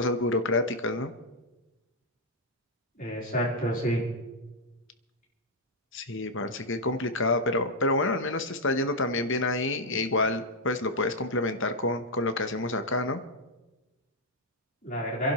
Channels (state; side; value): normal; both; correlation -0.03